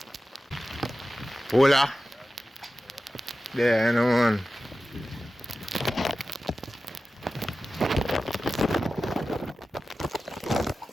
Hola. There, you know, man.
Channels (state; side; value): normal; both; correlation 0.94